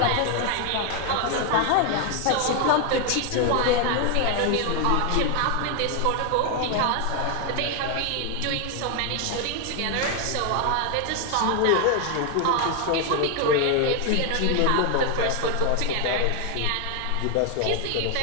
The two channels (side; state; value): both; different; correlation 0.00